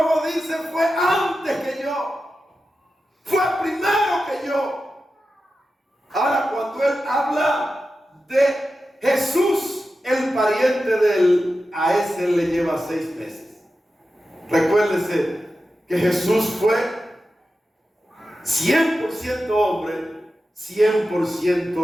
dice: fue antes que yo, fue primero que yo. Ahora, cuando él habla de Jesús, el pariente de él, a ese le lleva 6 meses. Recuérdese que Jesús fue 100% hombre,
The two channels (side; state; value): both; normal; correlation 0.92